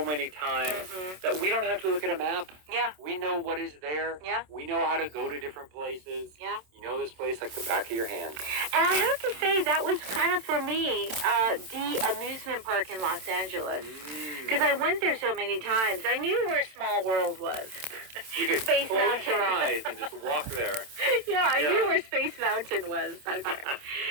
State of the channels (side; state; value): left; late; 27 ms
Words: many times that we don't have to look at a map. Yeah. We know what is there. Yeah. We know how to go to different places. Yeah. You know this place like the back of your hand. And I have to say, that was kind of, for me, the amusement park in Los Angeles. Because I went there so many times. I knew where Small World was. You could Space close Mountain. your eyes and just walk there. Yeah, I knew where Space Mountain was. Okay.